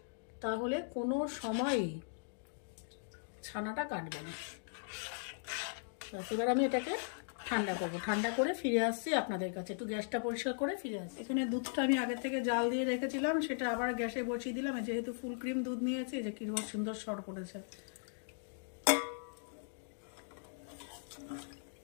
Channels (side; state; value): right; silent; digital silence